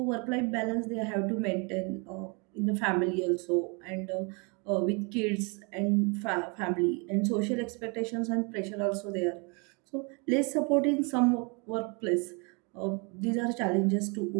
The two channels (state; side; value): quieter; left; 32.5 dB